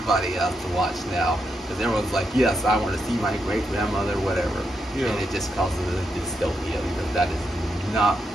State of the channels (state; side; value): normal; both; correlation 0.82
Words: has to watch now, because everyone's like, yes, I want to see my great grandmother, whatever. Yeah. And it just causes a dystopia, because that is not